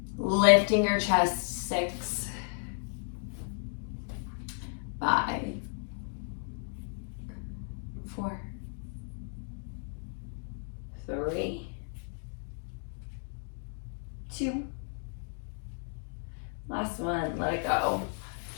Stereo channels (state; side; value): silent; right; 55 dB below the other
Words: Lifting your chest. 6, 5, 4, 3, 2. Last one, let it go.